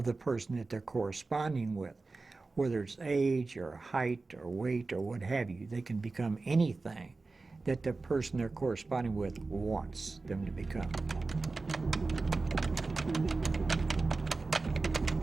the person that they're corresponding with. Whether it's age or height or weight or what have you, they can become anything that the person they're corresponding with wants them to become.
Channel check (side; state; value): left; quieter; 3.7 dB